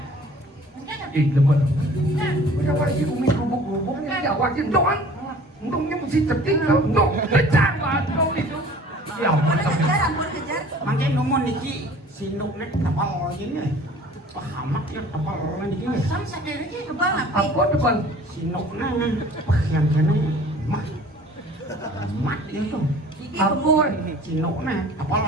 Ih, lemot. Kenapa sih umi gubuk-gubuknya jawakin doang? Untungnya mesti cetik kalau untuk pecah banget itu. Ya ampun. Ampun kejar. Mangke nomor niki sinuknya tapal ini. Pahamak ya tapal niki. Sam sadar aja. Kebal apa? Apa depan? Sinuknya yang kene mah. Mat itu. Iki Ampun. Sinuknya tapal.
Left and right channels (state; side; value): normal; both; correlation 0.48